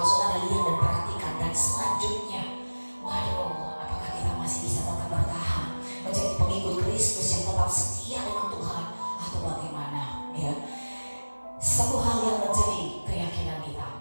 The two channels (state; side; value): inverted; both; correlation -1.00